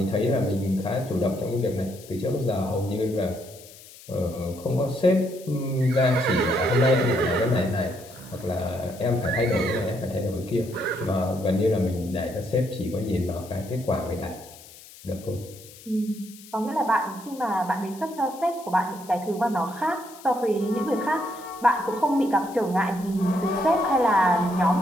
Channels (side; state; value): left; noise; hiss, 20 dB below the sound